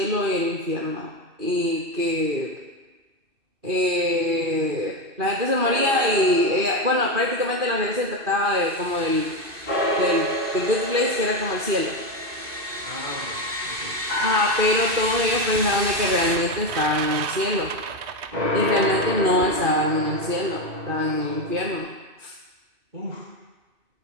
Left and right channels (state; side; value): late; left; 2.6 ms